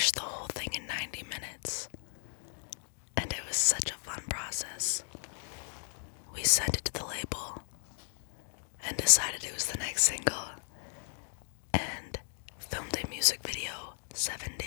the whole thing in 90 minutes. And it was such a fun process. We sent it to the label and decided it was the next single and filmed a music video 7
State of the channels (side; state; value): right; silent; digital silence